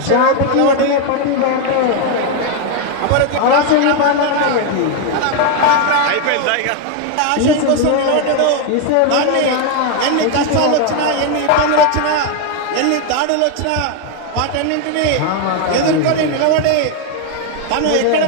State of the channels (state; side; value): different; both; correlation 0.01